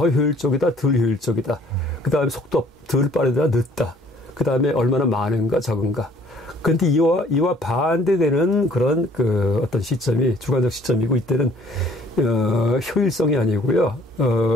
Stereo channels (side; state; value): both; normal; correlation 0.58